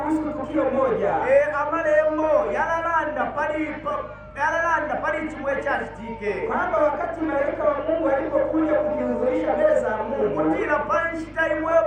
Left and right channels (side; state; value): both; identical; correlation 1.00